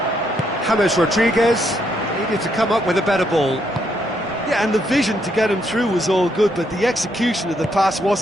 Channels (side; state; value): both; normal; correlation 0.75